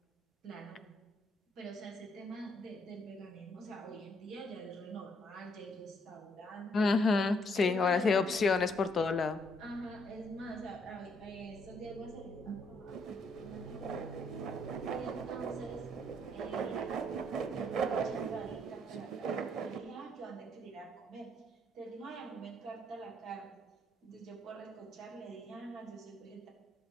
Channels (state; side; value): normal; both; correlation 0.70